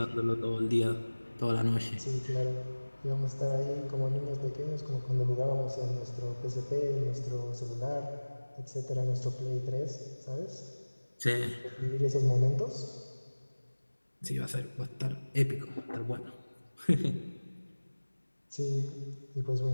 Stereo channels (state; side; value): inverted; both; correlation -1.00